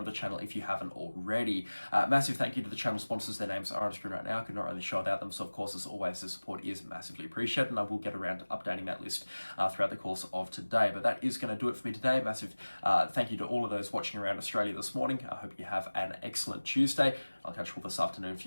to the channel if you haven't already. Massive thank you to the channel sponsors. Their names are on screen right now. I could not really show without them, so of course, as always, the support is massively appreciated, and I will get around to updating that list throughout the course of today. But that is going to do it for me today. Massive thank you to all of those watching around Australia this morning. I hope you have an excellent Tuesday. I'll catch you all this afternoon for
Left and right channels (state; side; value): inverted; both; correlation -1.00